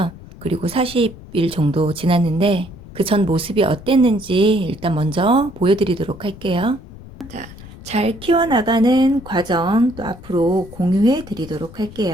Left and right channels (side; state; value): left; noise; rumble, 17 dB below the sound